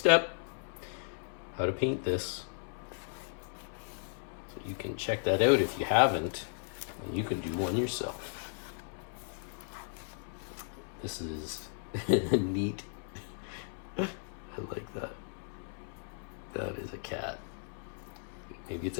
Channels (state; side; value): silent; right; 54 dB below the other